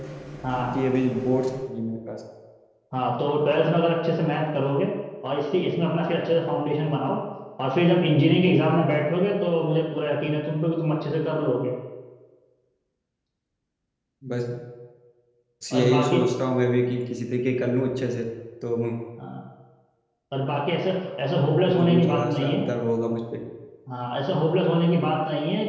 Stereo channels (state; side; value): identical; both; correlation 1.00